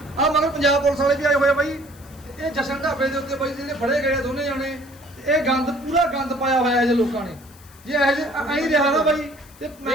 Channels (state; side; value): noise; left; hiss, 24 dB below the sound